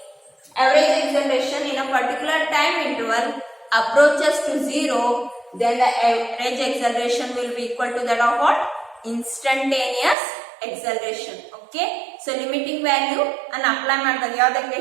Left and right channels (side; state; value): left; drops out; at 10.2 s